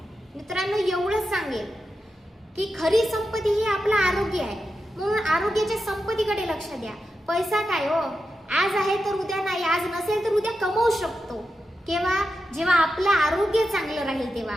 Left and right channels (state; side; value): normal; both; correlation 0.89